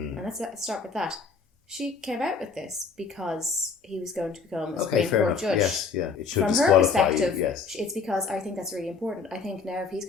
let's start with that. She came out with this because he was going to become a Supreme Court judge. Yes, yeah. It should From her perspective, yes. It's because I think that's really important. I think now if he's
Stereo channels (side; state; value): right; quieter; 5.0 dB